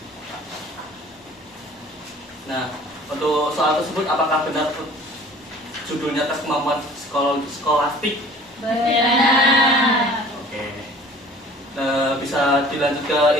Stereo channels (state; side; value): normal; both; correlation 0.48